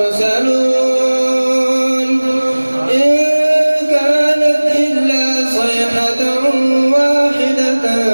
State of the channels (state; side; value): inverted; both; correlation -1.00